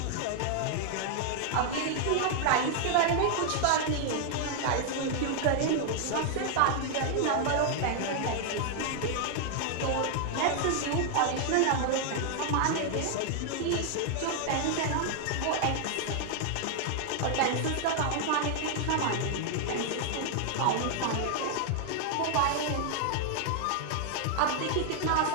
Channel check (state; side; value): different; both; correlation 0.00